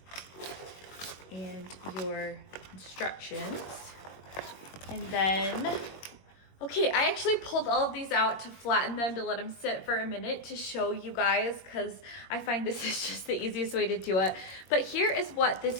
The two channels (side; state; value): right; late; 21 ms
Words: and your instructions. And then, okay, I actually pulled all of these out to flatten them, to let them sit for a minute to show you guys, because I find this is just the easiest way to do it. But here is what this